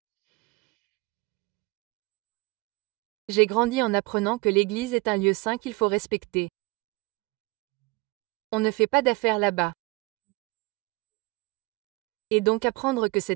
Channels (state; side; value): quieter; left; 25.2 dB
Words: J'ai grandi en apprenant que l'église est un lieu saint qu'il faut respecter. On ne fait pas d'affaires là-bas. Et donc apprendre que